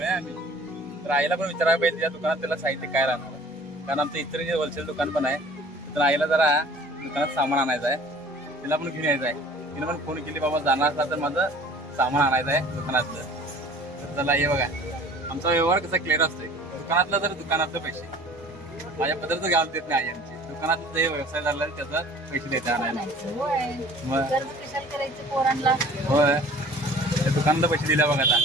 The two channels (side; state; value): both; normal; correlation 0.48